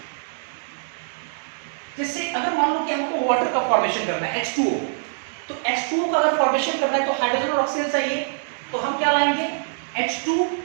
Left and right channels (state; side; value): silent; left; digital silence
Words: जैसे अगर मान लो कि हमको वाटर का फॉर्मेशन करना है, H2O, तो H2O का अगर फॉर्मेशन करना है तो हाइड्रोजन और ऑक्सीजन चाहिए, तो हम क्या लाएंगे, H2